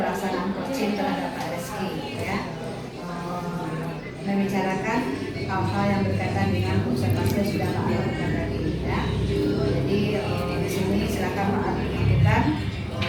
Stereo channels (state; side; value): identical; both; correlation 1.00